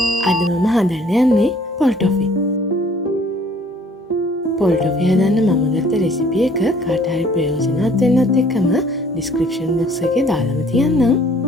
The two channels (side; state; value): both; normal; correlation 0.57